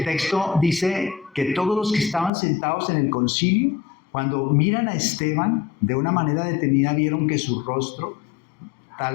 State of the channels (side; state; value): right; drops out; at 2.3 s